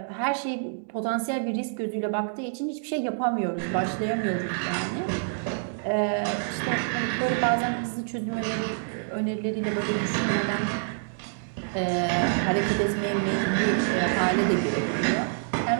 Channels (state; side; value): silent; left; digital silence